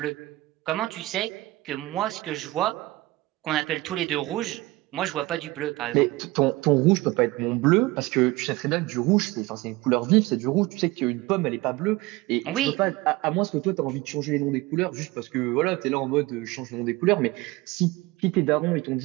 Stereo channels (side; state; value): left; quieter; 20.1 dB